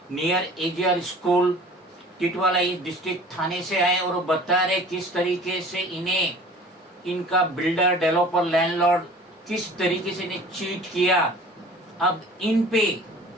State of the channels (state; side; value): normal; both; correlation 0.46